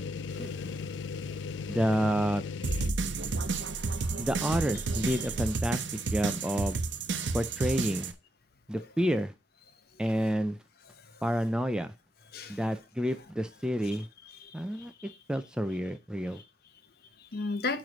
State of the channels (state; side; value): normal; both; correlation 0.82